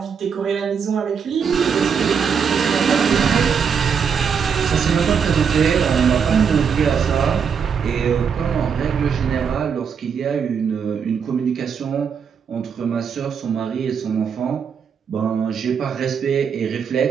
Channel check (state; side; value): quieter; left; 6.7 dB